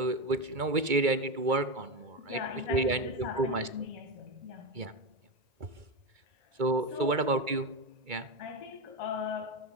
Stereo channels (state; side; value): late; left; 2.2 ms